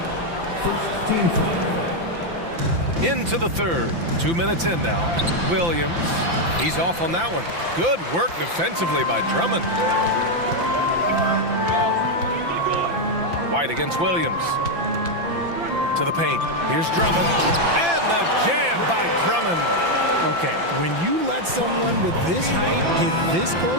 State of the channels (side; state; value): left; late; 5.9 ms